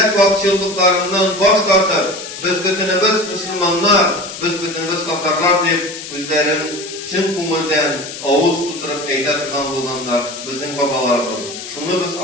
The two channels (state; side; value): noise; left; hiss, 11 dB below the sound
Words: vakçılıklarından baş tartıp, biz bütünümüz Müslümanlar, biz bütünümüz kafarlar deyip, özlerin çın kumulden ağız tuturup eyletirgan bulganlar, bizim babalarımız. Şunu biz